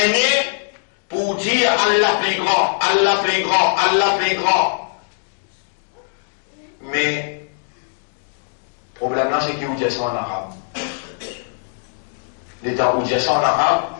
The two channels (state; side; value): silent; right; digital silence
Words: pour dire Allah plus grand, Allah plus grand, Allah plus grand. Mais, le problème là, c'est qu'il vous dit ça en arabe. L'état où dit ça en arabe,